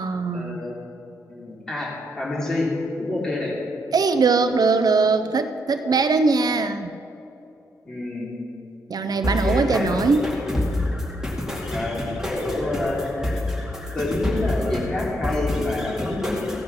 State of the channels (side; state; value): both; normal; correlation 0.75